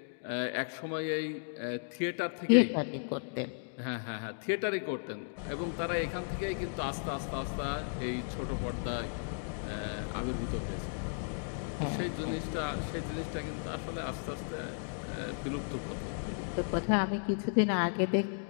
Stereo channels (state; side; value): silent; right; digital silence